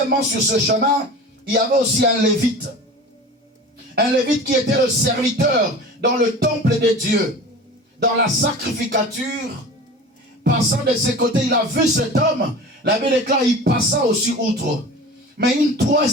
sur ce chemin, il y avait aussi un lévite. Un lévite qui était le serviteur dans le temple de Dieu, dans la sacrificature. Passant de ses côtés, il a vu cet homme. La Bible déclare, il passa aussi outre. Mais une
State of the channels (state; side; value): normal; both; correlation 0.36